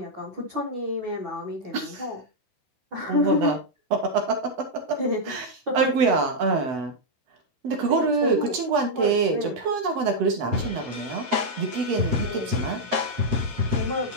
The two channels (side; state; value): left; late; 8.0 ms